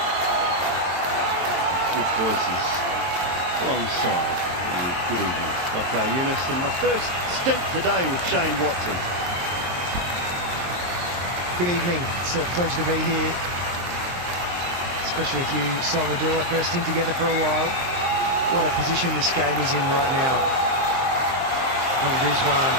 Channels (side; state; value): left; late; 23 ms